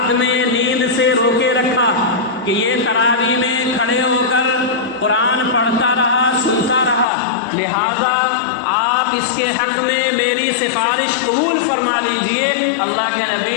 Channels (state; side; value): drops out; right; at 7.1 s